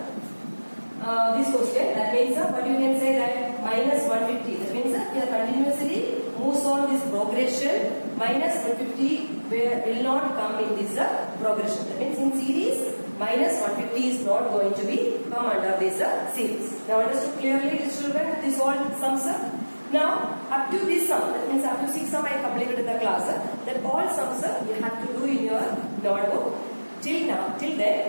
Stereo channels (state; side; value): inverted; both; correlation -1.00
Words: question. That means what you can say that minus 150. That means here continuously moves on this progression. Minus 150 will not come in this progression. That means in series minus 150 is not going to be come under this series. Now understood clearly, children, this all sums up. Now up to this sum, that means up to 6 sum I completed in the class. That all sums you have to do in your notebook. Till